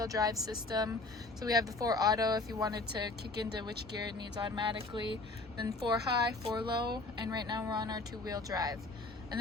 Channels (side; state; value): right; quieter; 3.2 dB